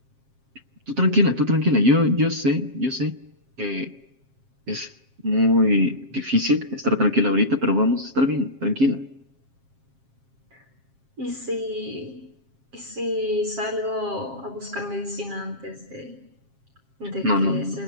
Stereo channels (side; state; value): left; late; 7.5 ms